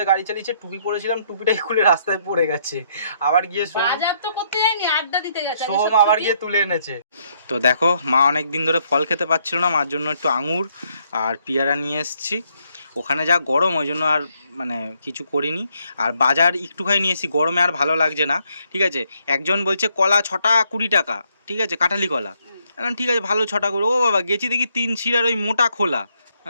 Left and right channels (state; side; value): inverted; both; correlation -0.73